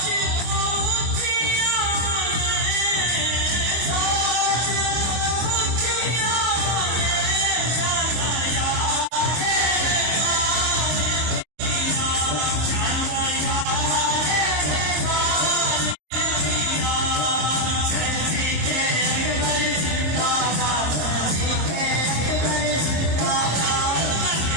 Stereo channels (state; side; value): late; left; 25 ms